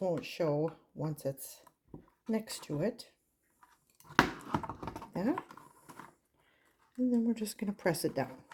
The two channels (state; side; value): identical; both; correlation 1.00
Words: show once it's next to it. Like that. And then we're just going to press it down.